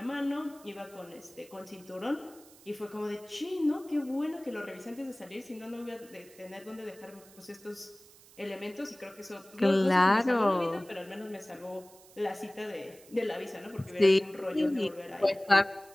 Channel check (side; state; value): right; noise; hiss, 23 dB below the sound